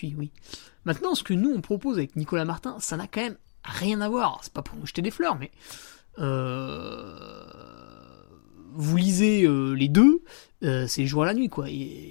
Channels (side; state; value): right; silent; digital silence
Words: oui. Maintenant, ce que nous, on propose avec Nicolas Martin, ça n'a quand même rien à voir. C'est pas pour nous jeter des fleurs, mais... vous lisez les deux, c'est le jour à la nuit, quoi.